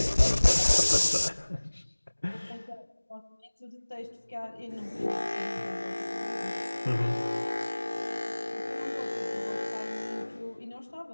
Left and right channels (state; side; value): inverted; both; correlation -1.00